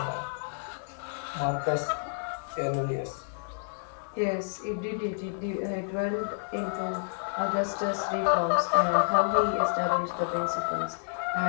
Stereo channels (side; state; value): right; silent; 58 dB below the other